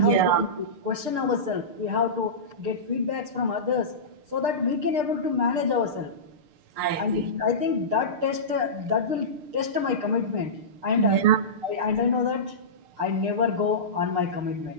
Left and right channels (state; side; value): late; left; 6.6 ms